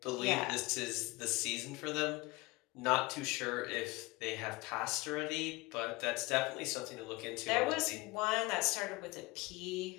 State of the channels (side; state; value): right; quieter; 22.9 dB